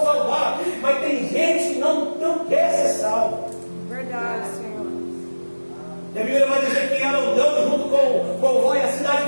salvar. Mas tem gente que não quer ser salvo. Verdade, Senhor. E a Bíblia vai dizer que ela andando junto com Ló e a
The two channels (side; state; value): both; inverted; correlation -1.00